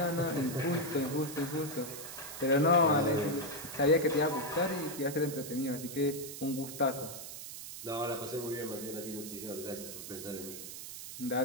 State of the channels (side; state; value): right; noise; hiss, 10 dB below the sound